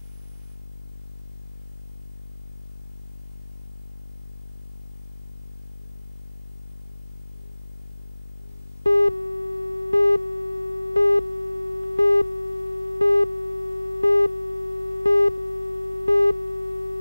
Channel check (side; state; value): both; inverted; correlation -0.99